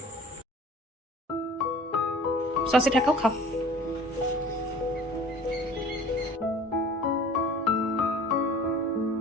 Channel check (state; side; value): normal; both; correlation 0.46